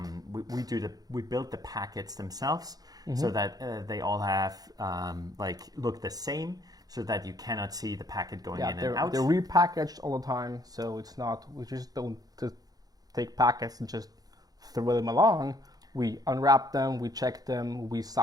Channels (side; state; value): left; late; 0.18 ms